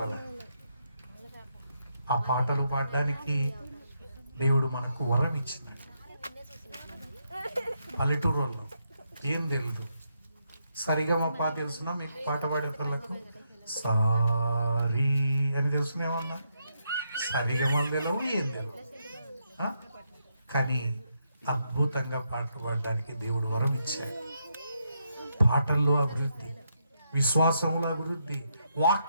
ఆ పాటలు పాడడానికి దేవుడు మనకు వరం ఇచ్చినాడు. పల్లెటూరు వాళ్ళు ఏం తెలియదు, సరిగమపా తెలుసునా మీకు? పాట పాడే వాళ్ళకు సారీ అని తెలుసునేమన్నా? సరిగమలు తెలియవు, ఏం తెలియవు. కానీ అద్భుతంగా పాటలు పాడడానికి దేవుడు వరం ఇచ్చాడు. పాటల్లో అభివృద్ధి, విశ్వాసముల అభివృద్ధి,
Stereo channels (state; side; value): inverted; both; correlation -0.80